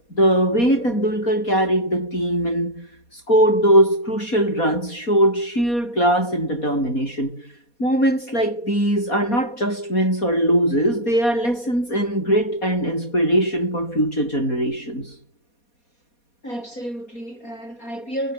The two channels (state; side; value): late; right; 4.2 ms